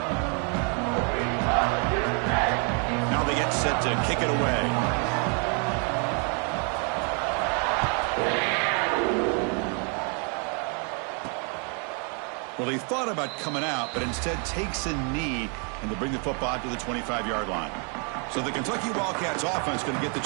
Now they get set to kick it away. Well, he thought about coming out, but instead takes a knee and will bring the football to the 25-yard line. So the Kentucky Wildcats offense going to get the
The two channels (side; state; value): left; quieter; 38.5 dB